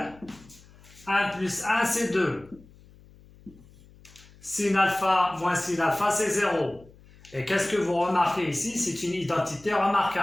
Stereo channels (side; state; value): left; noise; hum, 25 dB below the sound